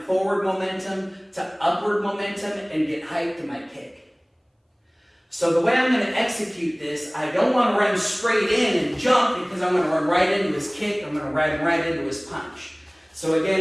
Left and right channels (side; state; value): both; identical; correlation 1.00